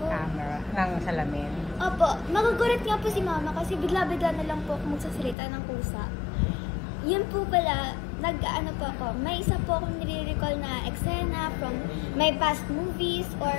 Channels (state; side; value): drops out; right; at 5.4 s